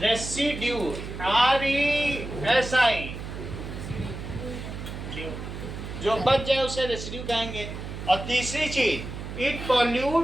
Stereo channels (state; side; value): noise; right; hum, 8 dB below the sound